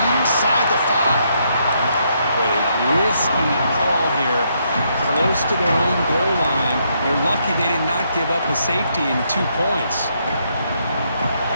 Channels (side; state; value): both; inverted; correlation -0.75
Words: inside the 5. What a risky call here. Close to their own goal line. They're lucky they did not give up a safety in 2 points.